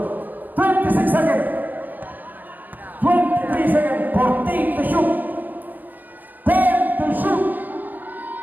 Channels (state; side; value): late; left; 0.085 ms